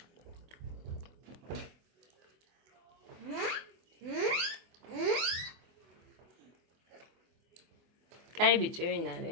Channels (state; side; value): late; left; 24 ms